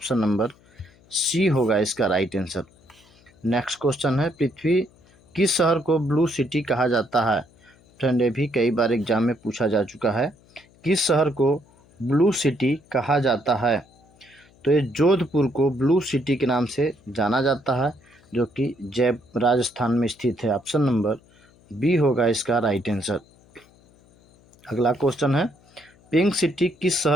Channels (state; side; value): noise; left; hum, 29 dB below the sound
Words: नंबर सी होगा इसका राइट आंसर। नेक्स्ट क्वेश्चन है, पृथ्वी किस शहर को ब्लू सिटी कहा जाता है? फ्रेंड ये भी कई बार एग्जाम में पूछा जा चुका है। किस शहर को ब्लू सिटी कहा जाता है? तो ये जोधपुर को ब्लू सिटी के नाम से जाना जाता है जो कि राजस्थान में स्थित है। ऑप्शन नंबर बी होगा इसका राइट आंसर। अगला क्वेश्चन है, पिंक सिटी किस